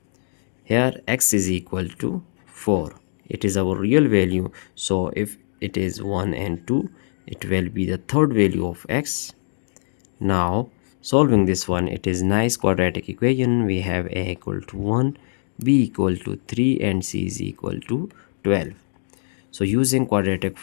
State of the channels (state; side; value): silent; right; digital silence